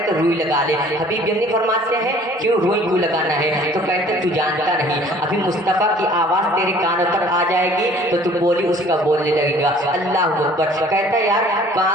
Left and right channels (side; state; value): both; normal; correlation 0.52